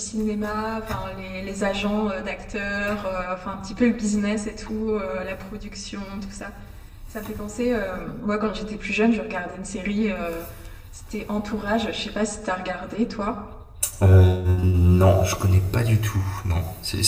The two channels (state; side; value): identical; both; correlation 1.00